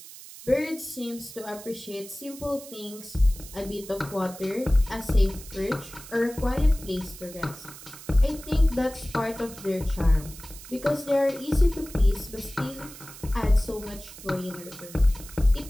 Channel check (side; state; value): right; noise; hiss, 16 dB below the sound